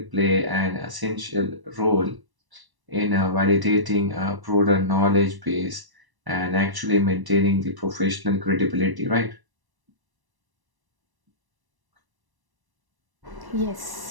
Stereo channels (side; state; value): left; late; 1.0 ms